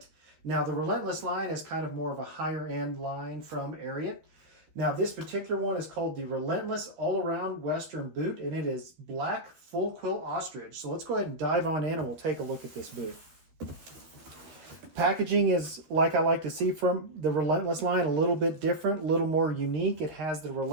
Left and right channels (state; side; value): late; left; 12 ms